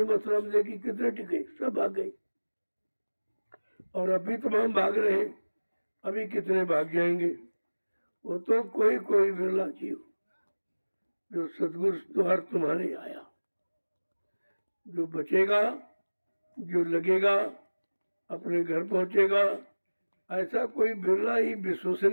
मथुरा में देखी, कितने टिके, सब भाग गए। और अभी तमाम भाग रहे हैं, अभी कितने भाग जाएंगे। वो तो कोई कोई बिरला जीव जो सदगुरु द्वार तुम्हारे आया, जो बचेगा, जो लगेगा, अपने घर पहुंचेगा। ऐसा कोई बिरला ही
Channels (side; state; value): both; inverted; correlation -1.00